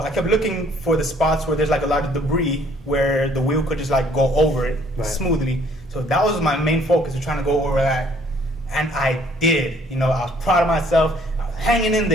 I kept looking for the spots where there's like a lot of debris where the wheel could just like go over it smoothly. So that was my main focus, was trying to go over that. And I did. You know, I was proud of myself. I was hanging in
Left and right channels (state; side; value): normal; both; correlation 0.61